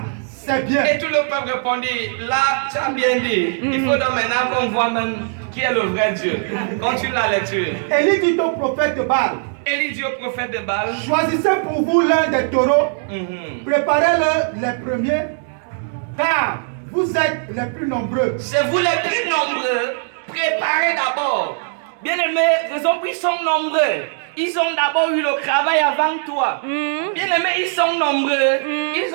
c'est bien. Et tout le peuple répondit, là, tu as bien dit. Il faut donc maintenant qu'on voit même qui est le vrai Dieu. Continue la lecture. Élie dit au prophète de Baal, Élie dit au prophète de Baal, choisissez pour vous l'un des taureaux, préparez-le les premiers, car vous êtes les plus nombreux. c'est vous les plus nombreux, préparez d'abord. Bien aimé, raison pour ils sont nombreux. Ils ont d'abord eu le travail avant toi. Bien aimé, ils sont nombreux. Ils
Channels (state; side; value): silent; left; 66 dB below the other